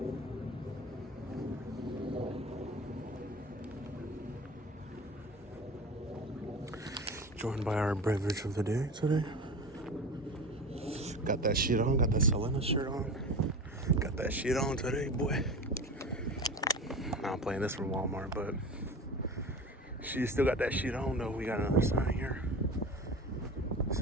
Joined by our beverage of the day today. Got that shit on, got that Selena shirt on. Got that shit on today, boy. Now I'm playing this from Walmart, but she still got that shit on though. We got another sign here. It's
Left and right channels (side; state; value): both; normal; correlation 0.32